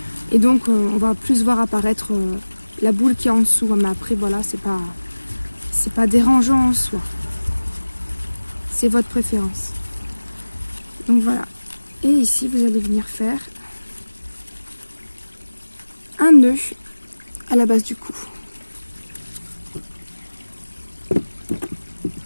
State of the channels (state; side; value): inverted; both; correlation -1.00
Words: et donc on va plus voir apparaître la boule qui est en dessous, mais après voilà, c'est pas dérangeant en soi, c'est votre préférence. Donc voilà, et ici vous allez venir faire un nœud à la base du cou.